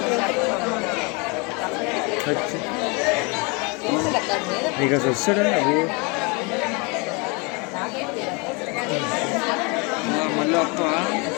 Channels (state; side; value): quieter; right; 30.1 dB